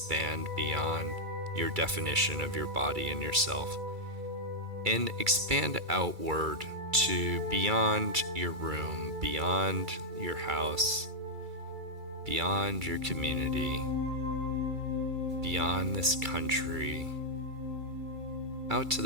beyond your definition of your body and yourself, and expand outward to beyond your room, beyond your house, beyond your community, beyond this country, out to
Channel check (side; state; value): left; late; 2.3 ms